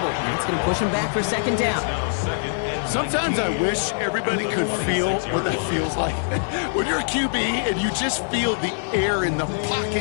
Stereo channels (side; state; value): right; silent; digital silence